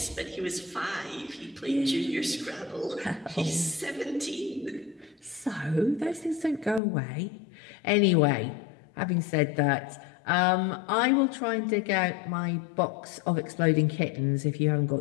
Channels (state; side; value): drops out; right; at 6.8 s